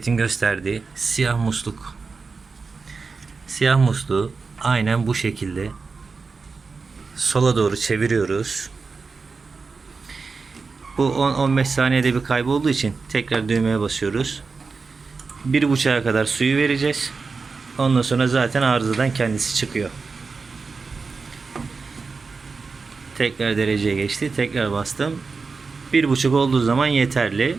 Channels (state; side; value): quieter; left; 4.5 dB